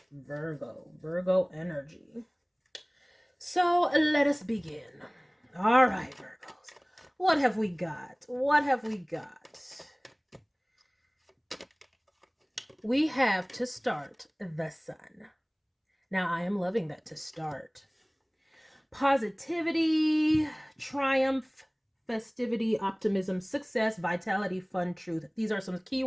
Virgo energy. So let us begin. All right, Virgos. What have we got? What have we got? We have to start the sun. Now, I am loving that to start. Positivity, triumph, festivity, optimism, success, vitality, fun, truth. These are some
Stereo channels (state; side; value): identical; both; correlation 1.00